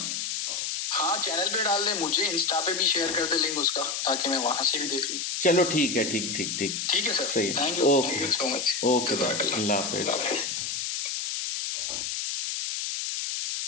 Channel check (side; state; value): left; noise; hiss, 3 dB below the sound